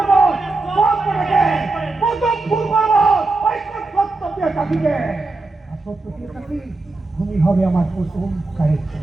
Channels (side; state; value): left; quieter; 3.2 dB